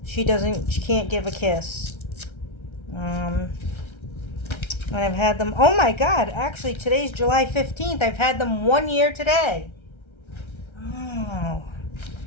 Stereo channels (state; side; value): late; right; 1.3 ms